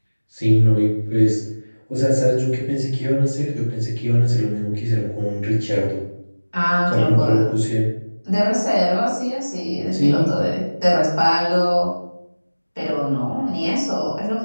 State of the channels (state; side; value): inverted; both; correlation -1.00